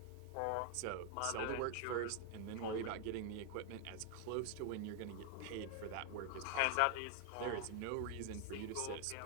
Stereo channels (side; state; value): both; different; correlation 0.00